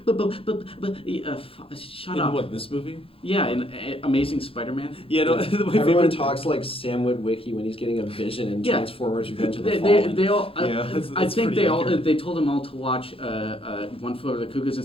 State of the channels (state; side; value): late; right; 0.27 ms